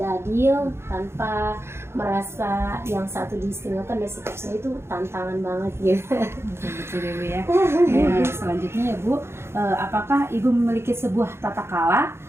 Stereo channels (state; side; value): late; left; 0.12 ms